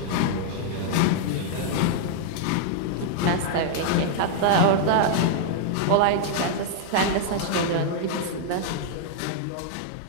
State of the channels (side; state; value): both; different; correlation -0.01